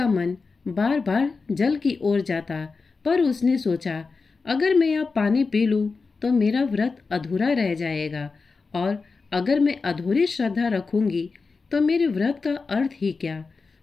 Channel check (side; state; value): right; quieter; 4.4 dB